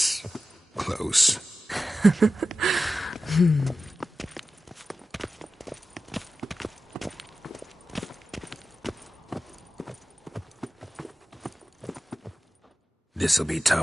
close. This'll be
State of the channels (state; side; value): normal; both; correlation 0.94